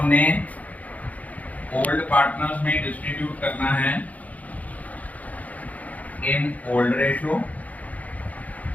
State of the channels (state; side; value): late; right; 0.074 ms